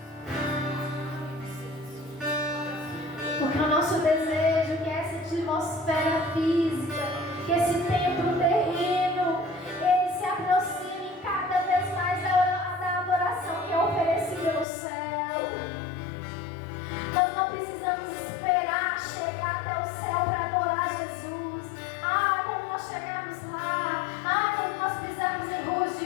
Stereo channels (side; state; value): right; drops out; at 14.7 s